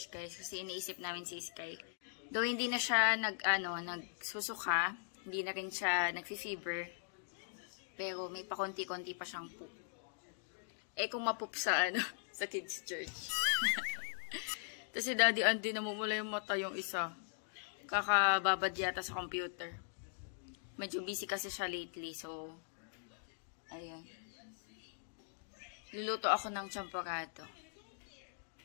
guys, kasi iniisip namin si Sky. Though hindi na siya nagsusuka, hindi na rin siya nagfi-fever, pero may pakonti-konti pa siyang poop. Kung mapoop sa sa kids church. Tapos si Daddy Andy, namumula yung mata yung isa. Kakababad yata sa computer. Medyo busy kasi siya lately, so ayan. Luluto ako ng champorado.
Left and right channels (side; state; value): right; silent; digital silence